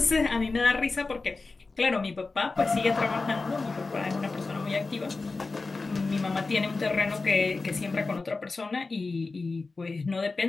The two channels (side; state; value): right; quieter; 3.8 dB